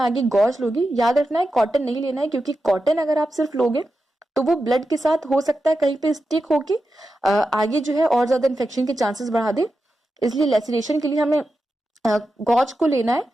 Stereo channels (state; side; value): normal; both; correlation 0.90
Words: गॉज लोगी। याद रखना है कॉटन नहीं लेना है, क्योंकि कॉटन अगर आप सिर्फ लोगे तो वो ब्लड के साथ हो सकता है कहीं पे स्टिक होके आगे जो है और ज्यादा इन्फेक्शन के चांसेस बढ़ा दे। इसलिए लेसिरेशन के लिए हमें गॉज को लेना है